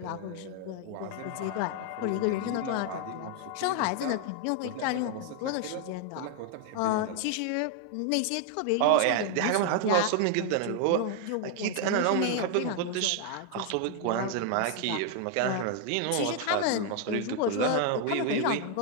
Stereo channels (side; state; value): both; different; correlation 0.00